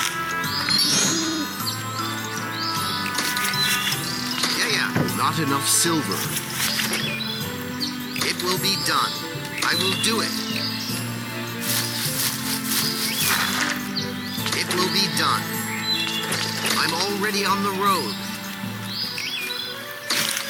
Yeah. Not enough silver. It will be done. I will do it. It will be done. I'm already on the road.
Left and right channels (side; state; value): both; identical; correlation 1.00